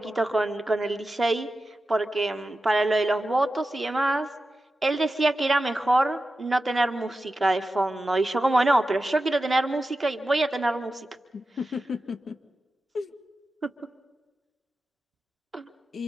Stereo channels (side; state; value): both; normal; correlation 0.92